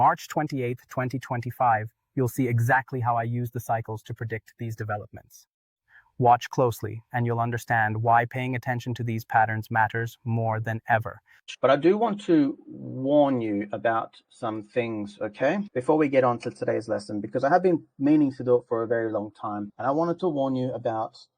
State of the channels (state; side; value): identical; both; correlation 1.00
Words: 28, 2025, you'll see exactly how I use the cycles to predict these developments. Watch closely, and you'll understand why paying attention to these patterns matters more than ever. But I do want to warn you about some things, okay? Before we get on to today's lesson, because I have been meaning to do it for a very long time. And I wanted to warn you about